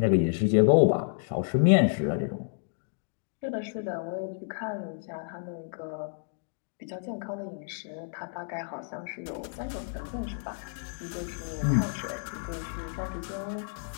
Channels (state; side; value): silent; right; digital silence